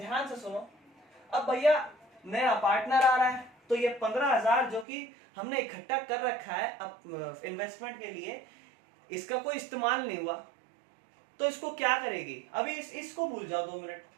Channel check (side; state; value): left; drops out; at 4.9 s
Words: से सुनो, अब भैया नया पार्टनर आ रहा है, तो ये 15,000 जो कि हमने इकट्ठा कर रखा है अब इन्वेस्टमेंट के लिए, इसका कोई इस्तेमाल नहीं हुआ, तो इसको क्या करेगी? अभी इसको भूल जाओ 2 मिनट,